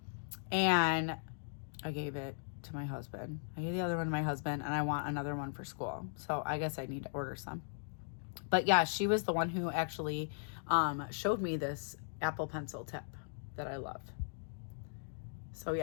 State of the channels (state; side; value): silent; right; digital silence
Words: I gave it to my husband. I gave the other one to my husband, and I want another one for school. So I guess I need to order some. But yeah, she was the one who actually showed me this Apple Pencil tip that I love. So